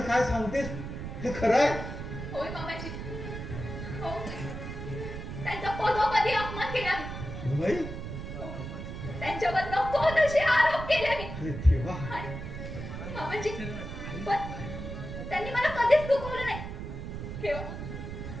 काय सांगतेस? हे खरं आहे? होय मामाजी. हो त्यांचा पदोपदी अपमान केला मी. सुनबाई त्यांच्यावर नको तसे आरोप केले मी. अरे देवा. मामाजी पण त्यांनी मला कधीच दुखवलं नाही. केवळ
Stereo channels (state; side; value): noise; right; rumble, 7 dB below the sound